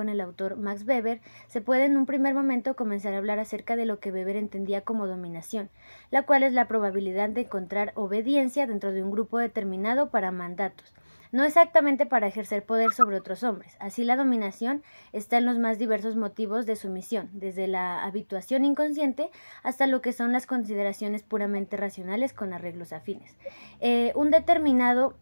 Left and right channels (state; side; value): inverted; both; correlation -1.00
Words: el autor Max Weber, se puede en un primer momento comenzar a hablar acerca de lo que Weber entendía como dominación, la cual es la probabilidad de encontrar obediencia dentro de un grupo determinado para mandatos, no exactamente para ejercer poder sobre otros hombres. Así la dominación está en los más diversos motivos de sumisión, desde la habituación inconsciente hasta lo que son las consideraciones puramente racionales con arreglos afines. Un determinado